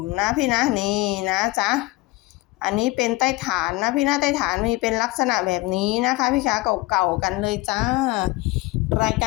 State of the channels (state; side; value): quieter; right; 20.2 dB